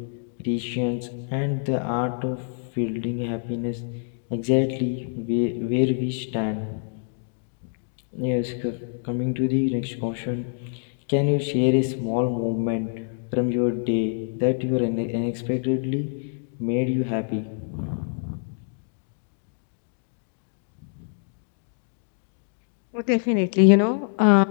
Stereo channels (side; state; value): right; silent; digital silence